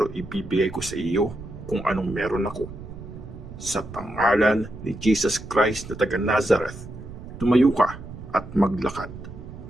ibibigay ko sa iyo kung anong meron ako. Sa pangalan ni Jesus Christ na taga Nazareth, tumayo ka at maglakad."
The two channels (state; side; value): noise; right; rumble, 13 dB below the sound